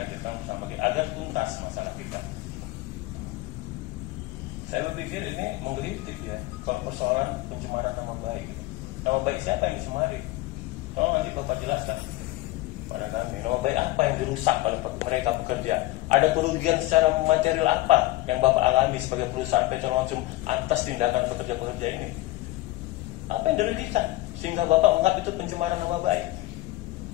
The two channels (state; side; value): quieter; right; 18.4 dB